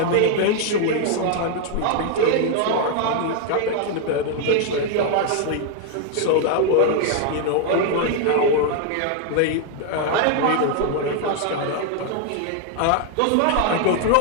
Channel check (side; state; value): both; different; correlation 0.00